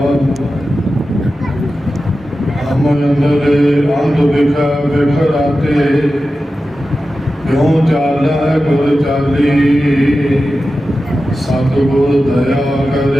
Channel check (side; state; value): both; normal; correlation 0.93